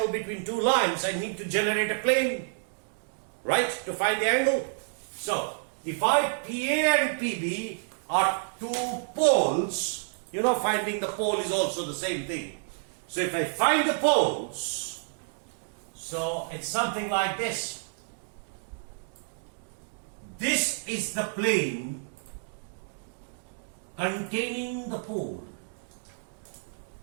between two lines, I need to generate a plane, right, to find the angle. So if PA and PB are two poles, you know, finding the pole is also the same thing. So if I find the poles, so it's something like this. This is the plane containing the pole.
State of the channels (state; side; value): silent; left; digital silence